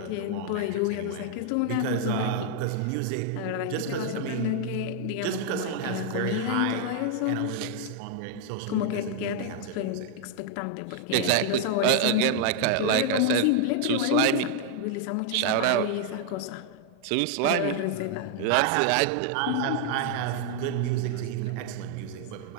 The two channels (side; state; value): both; different; correlation 0.00